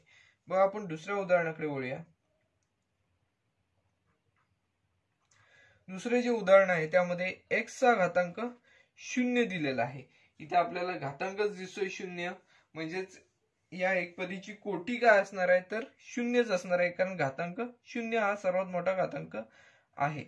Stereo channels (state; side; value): identical; both; correlation 1.00